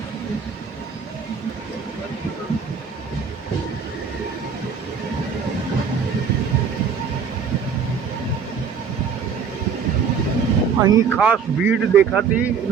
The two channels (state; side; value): quieter; left; 6.4 dB